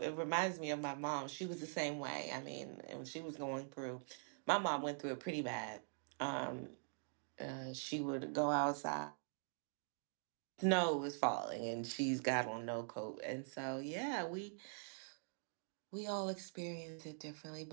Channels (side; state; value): left; silent; digital silence